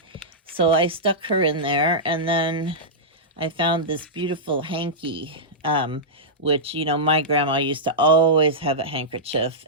so I stuck her in there. And then I found this beautiful hanky, which, my grandma used to always have a handkerchief,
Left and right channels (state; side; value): normal; both; correlation -0.12